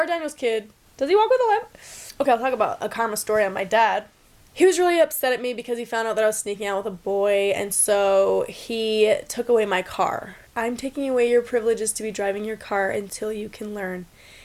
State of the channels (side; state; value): both; identical; correlation 1.00